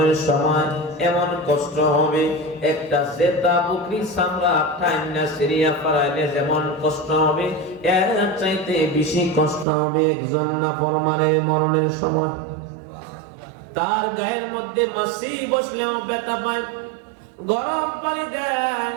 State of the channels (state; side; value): drops out; left; at 9.7 s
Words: সময় এমন কষ্ট হবে, একটা জেতা বকরি চামড়া টাইনা সিরিয়া পারাইলে যেমন কষ্ট হবে, এর চাইতে বেশি কষ্ট হবে একজন নাফরমানের মরণের সময়। তার গায়ের মধ্যে মাছি বসলেও ব্যথা পায়, গরম পানি দেয়,